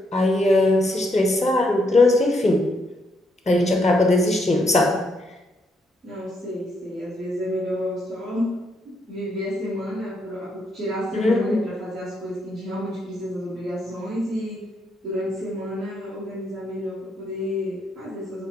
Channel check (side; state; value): both; normal; correlation 0.76